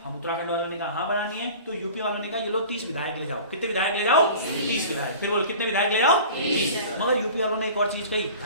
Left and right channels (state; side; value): inverted; both; correlation -0.40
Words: हम उत्तराखंड वालों ने कहा हाँ बनानी है। तो यूपी वालों ने कहा ये लो 30 विधायक ले जाओ। कितने विधायक ले जाओ, 30 विधायक। फिर बोलो कितने विधायक ले जाओ, 30। मगर यूपी वालों ने एक और चीज कही,